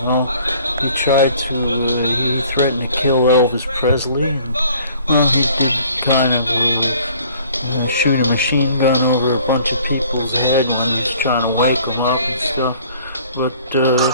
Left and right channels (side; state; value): both; inverted; correlation -0.55